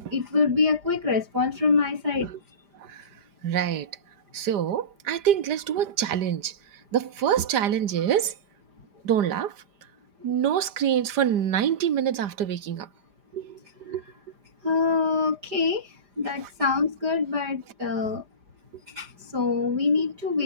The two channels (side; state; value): left; late; 5.0 ms